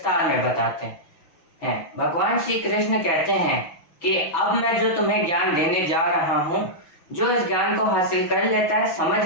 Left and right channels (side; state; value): right; late; 6.1 ms